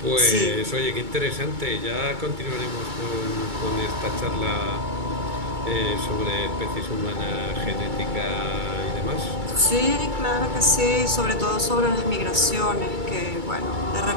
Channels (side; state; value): left; late; 2.3 ms